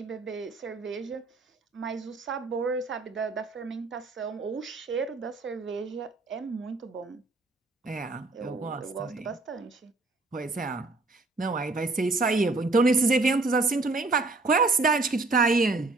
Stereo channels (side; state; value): left; quieter; 3.4 dB